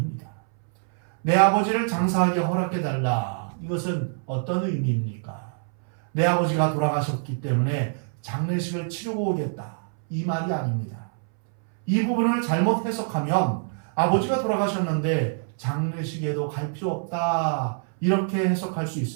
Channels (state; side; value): silent; left; 62 dB below the other